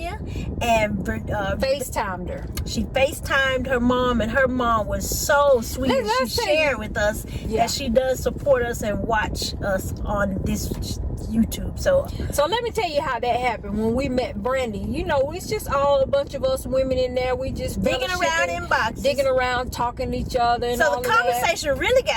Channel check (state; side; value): identical; both; correlation 1.00